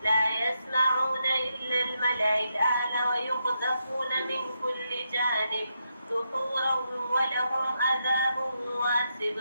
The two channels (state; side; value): inverted; both; correlation -0.83